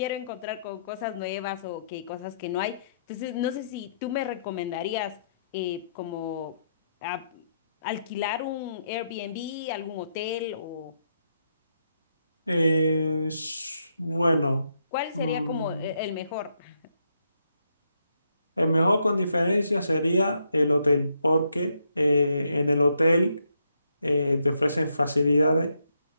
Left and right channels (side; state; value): both; inverted; correlation -0.78